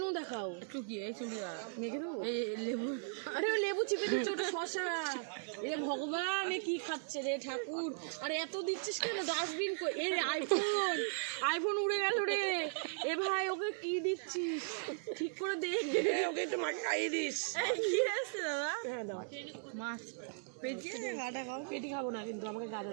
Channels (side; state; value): left; silent; digital silence